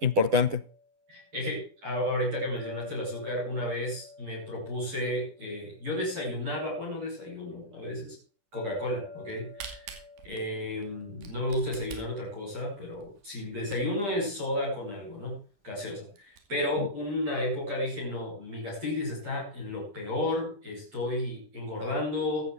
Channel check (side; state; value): left; late; 10 ms